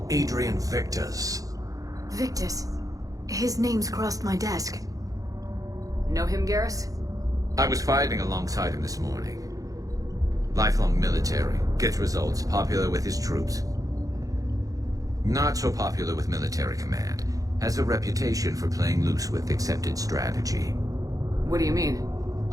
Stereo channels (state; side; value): late; left; 0.17 ms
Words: Adrian Victus. Victus? His name's crossed my desk. Know him, Garrus? I was fighting alongside him this morning. Lifelong military, gets results, popular with his troops. Not so popular with military command. Has a reputation for playing loose with accepted strategy. What do you mean?